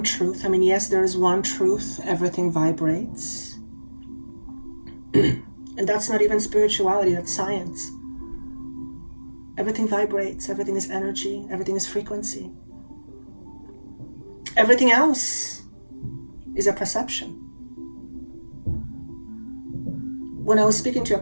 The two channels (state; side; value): inverted; both; correlation -1.00